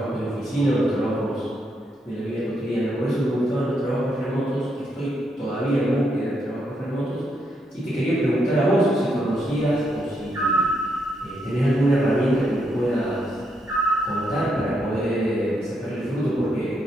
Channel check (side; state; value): both; normal; correlation 0.78